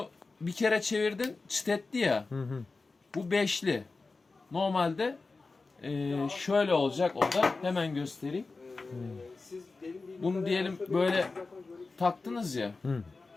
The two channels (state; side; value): quieter; right; 3.9 dB